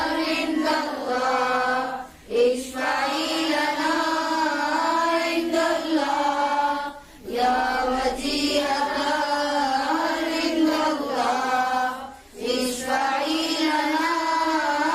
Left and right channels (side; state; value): both; identical; correlation 1.00